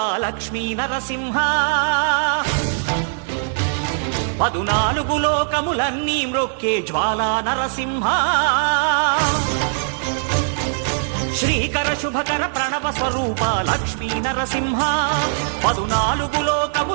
లక్ష్మీ నరసింహ 14 లోకములన్నీ మ్రొక్కే జ్వాలా నరసింహ శ్రీకర శుభకర ప్రణవ స్వరూప లక్ష్మీ నరసింహ 14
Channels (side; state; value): left; silent; 65 dB below the other